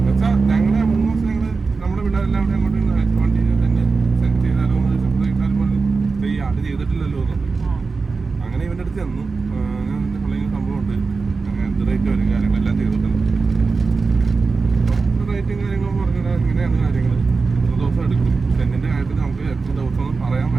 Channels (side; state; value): left; quieter; 4.4 dB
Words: വെച്ചാൽ ഞങ്ങളെ 3 ദിവസം ഞങ്ങൾ നമ്മുടെ പിള്ളേരെല്ലാം കൂടെ അങ്ങോട്ട് വണ്ടി തന്നെ സെൻഡ് ചെയ്താലോ എന്ന് ചോദിച്ചാൽ ഈ ആട് ചെയ്തിട്ടില്ലല്ലോ എന്നുള്ളത്. അങ്ങനെ ഇവൻ്റെ അടുത്ത് ചെന്നു, ഞാൻ സംഭവമുണ്ട്, അങ്ങനെ എന്ത് റേറ്റ് വരും കാര്യങ്ങളെല്ലാം ചെയ്തിട്ടുണ്ട്. റേറ്റും കാര്യങ്ങളും പറഞ്ഞാൽ ഇങ്ങനെയാണ് കാര്യങ്ങൾ. എത്ര ദിവസം എടുക്കും സെന്നിൻ്റെ കാര്യത്തിൽ നമുക്ക് എത്ര ദിവസം ഒന്നും പറയാൻ